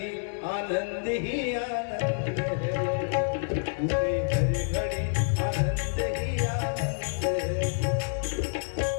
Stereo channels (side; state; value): right; silent; 59 dB below the other